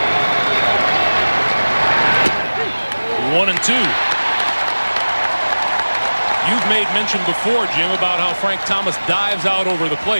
1-2. You've made mention before, Jim, about how Frank Thomas dives out over the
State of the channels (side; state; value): both; inverted; correlation -1.00